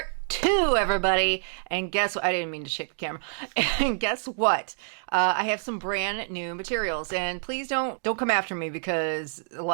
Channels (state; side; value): silent; left; digital silence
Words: 2, everybody. And guess what? I didn't mean to shake the camera. And guess what? I have some brand new materials, and please don't come after me because a